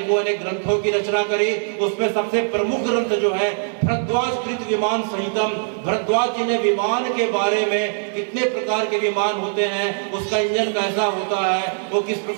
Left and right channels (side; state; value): left; silent; 59 dB below the other